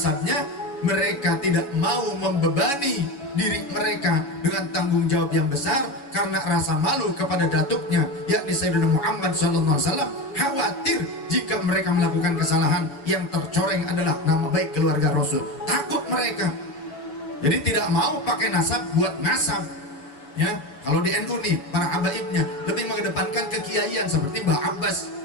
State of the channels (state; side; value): late; right; 7.1 ms